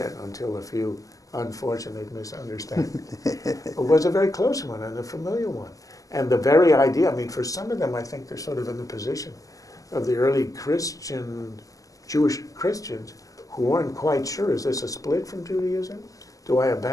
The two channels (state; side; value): late; right; 0.17 ms